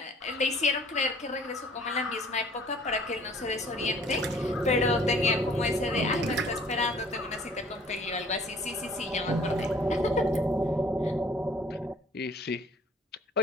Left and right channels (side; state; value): both; normal; correlation 0.54